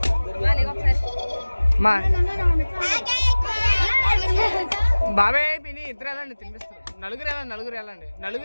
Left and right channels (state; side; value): inverted; both; correlation -1.00